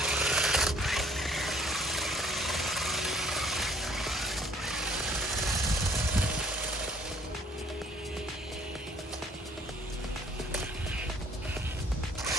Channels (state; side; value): normal; both; correlation 0.58